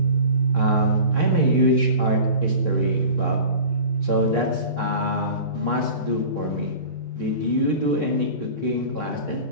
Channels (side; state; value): right; late; 3.3 ms